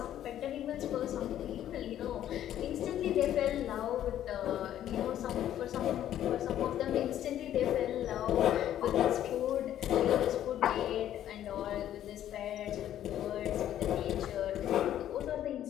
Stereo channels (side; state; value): right; quieter; 11.5 dB